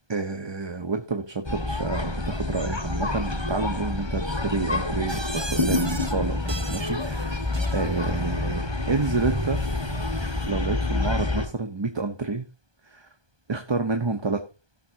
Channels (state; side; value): late; left; 1.2 ms